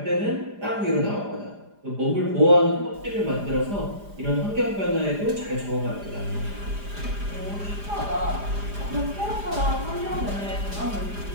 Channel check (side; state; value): left; late; 4.9 ms